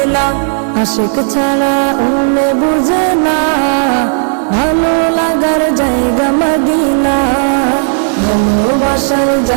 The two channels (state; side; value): silent; left; digital silence